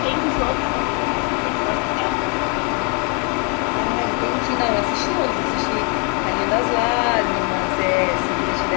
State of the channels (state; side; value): quieter; right; 34.7 dB